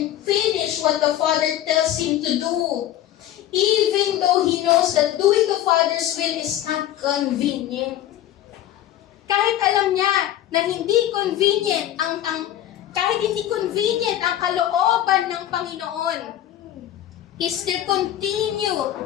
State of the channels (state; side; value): quieter; right; 12.4 dB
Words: finish what the Father tells Him to do. Even though He knows that doing the Father's will is not convenient. Kahit alam niya na hindi convenient kahit hindi convenient ang kalooban ng Panginoon, He still continue